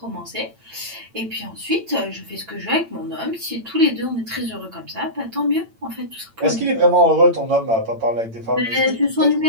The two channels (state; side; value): late; left; 8.9 ms